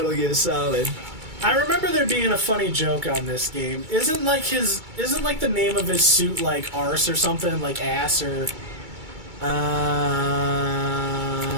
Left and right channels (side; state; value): left; late; 2.3 ms